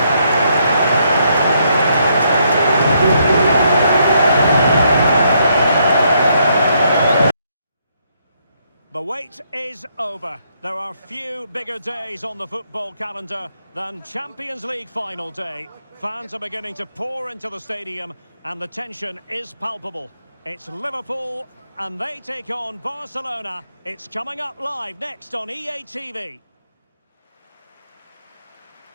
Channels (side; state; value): both; inverted; correlation -0.74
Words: The wait is over. There are few bigger days on the football calendar than Champions League final day. Fans are beginning to pour into the stadium and the tension is palpable. It's Liverpool and they take on Barcelona. It's coming up live next on EA TV.